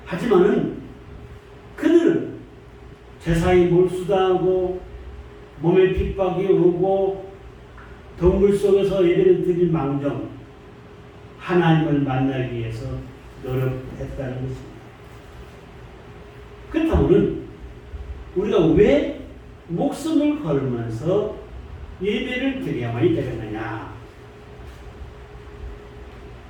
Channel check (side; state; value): both; identical; correlation 1.00